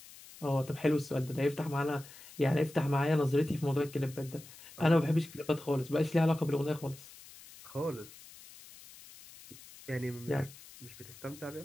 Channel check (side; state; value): left; noise; hiss, 19 dB below the sound